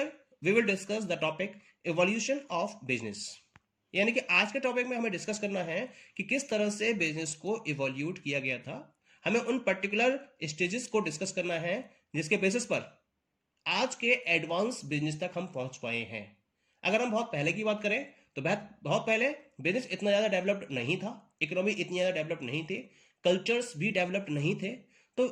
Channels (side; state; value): both; identical; correlation 1.00